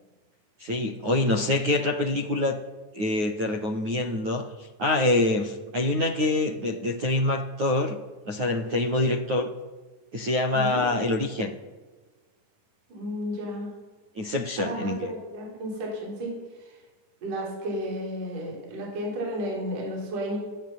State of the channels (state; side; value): late; left; 9.5 ms